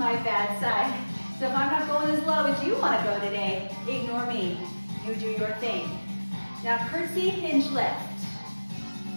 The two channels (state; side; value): inverted; both; correlation -1.00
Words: bad side. So if I'm not going as low as you want to go today, ignore me. You do your thing. Now curtsy, hinge lift.